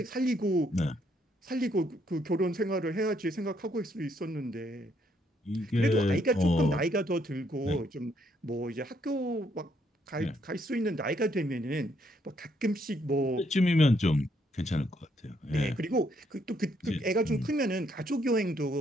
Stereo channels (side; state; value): both; normal; correlation 0.72